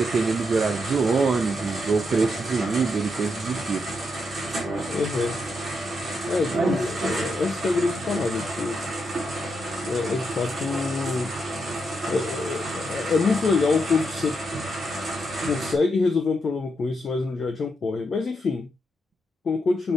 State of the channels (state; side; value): normal; both; correlation 0.81